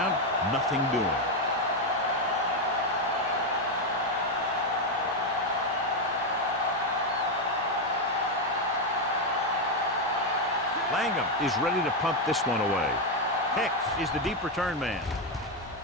nothing doing. Langham is ready to punt this one away. Hicks is the deep return man.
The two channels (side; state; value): both; normal; correlation 0.05